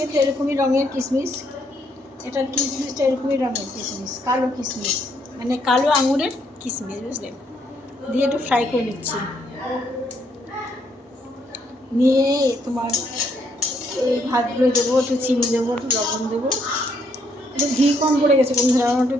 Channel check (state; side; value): normal; both; correlation 0.72